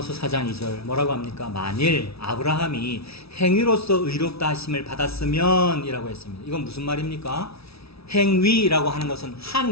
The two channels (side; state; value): right; late; 0.77 ms